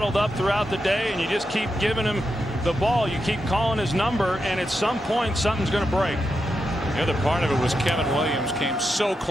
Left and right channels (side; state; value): both; normal; correlation 0.86